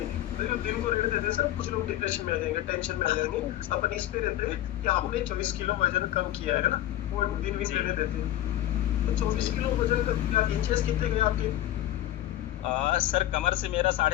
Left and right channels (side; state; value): right; quieter; 13.4 dB